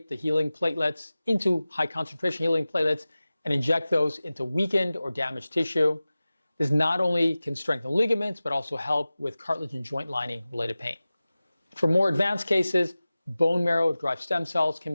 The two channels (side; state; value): both; inverted; correlation -0.97